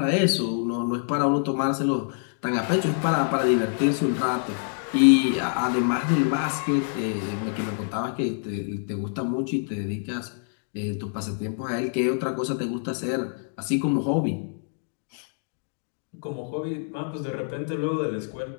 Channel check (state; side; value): silent; right; 61 dB below the other